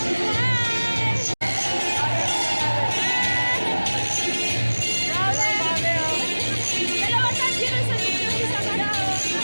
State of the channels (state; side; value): inverted; both; correlation -1.00